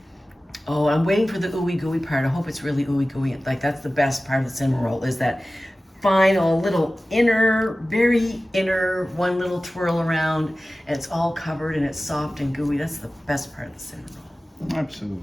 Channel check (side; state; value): both; normal; correlation 0.96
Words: Oh, I'm waiting for the ooey gooey part. I hope it's really ooey gooey. Like that's the best part of the cinnamon roll is that final little inner, very inner, one little twirl around, and it's all covered and it's soft and gooey. That's the best part of the cinnamon roll.